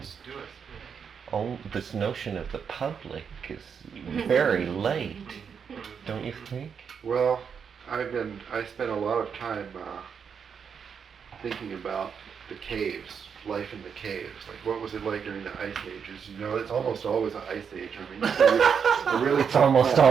do it. Oh, this notion of the public is very late, don't you think? Well, I spent a lot of time thinking about the caves, life in the caves. Like, what was it like during the ice ages? You know, it's almost always an ice age. I mean, it really It's almost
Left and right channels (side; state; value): left; quieter; 6.8 dB